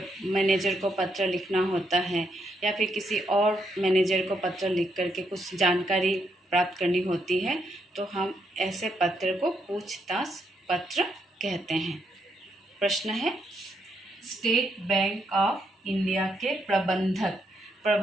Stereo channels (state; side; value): normal; both; correlation 0.77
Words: मैनेजर को पत्र लिखना होता है, या फिर किसी और मैनेजर को पत्र लिख करके कुछ जानकारी प्राप्त करनी होती है, तो हम ऐसे पत्र को पूछताछ पत्र कहते हैं। प्रश्न है, स्टेट बैंक ऑफ इंडिया के